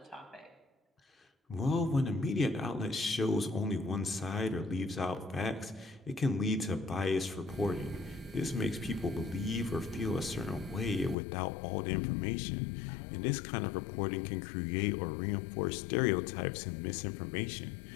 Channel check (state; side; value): drops out; right; at 11.2 s